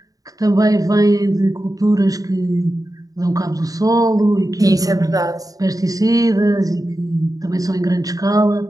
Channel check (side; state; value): left; late; 0.17 ms